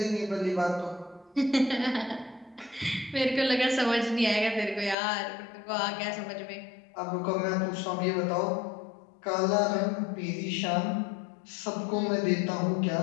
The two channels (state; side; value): drops out; right; at 5.0 s